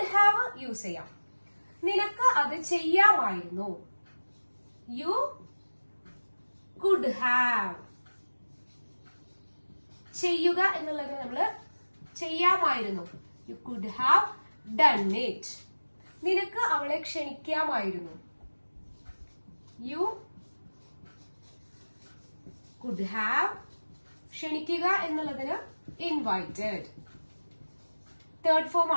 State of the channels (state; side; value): inverted; both; correlation -1.00